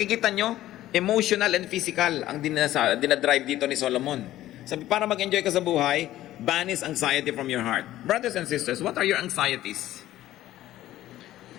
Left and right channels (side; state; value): right; quieter; 14.3 dB